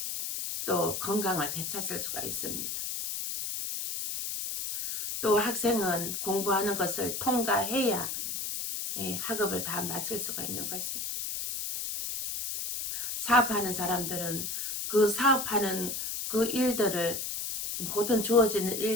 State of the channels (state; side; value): noise; left; hiss, 4 dB below the sound